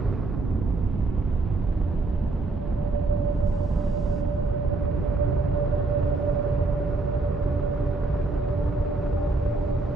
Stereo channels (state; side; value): quieter; left; 3.5 dB